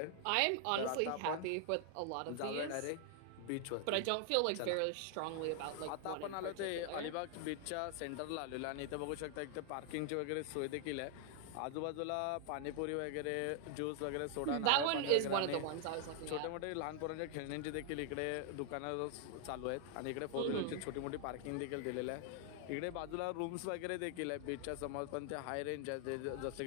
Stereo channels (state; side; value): different; both; correlation 0.00